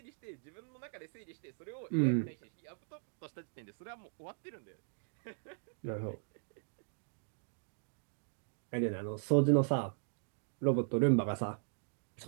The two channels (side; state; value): left; silent; digital silence